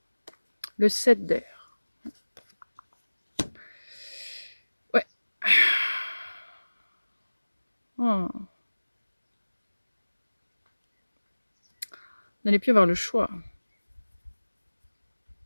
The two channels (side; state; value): both; inverted; correlation -1.00